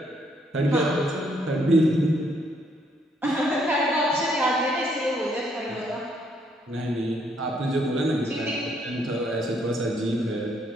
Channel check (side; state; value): both; normal; correlation 0.71